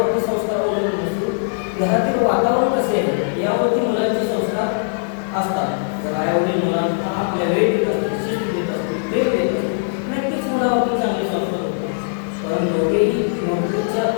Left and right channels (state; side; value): silent; right; digital silence